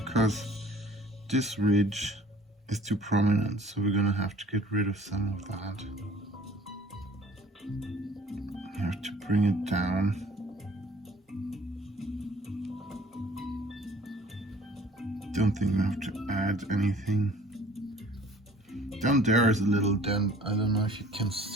this ridge is too prominent, so we're gonna have to get rid of some of that. You have to bring it down. Don't think we have to add anything. Down there is a little dent. I don't know if you can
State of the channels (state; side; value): normal; both; correlation 0.51